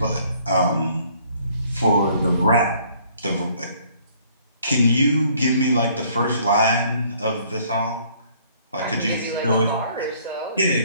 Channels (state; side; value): inverted; both; correlation -0.60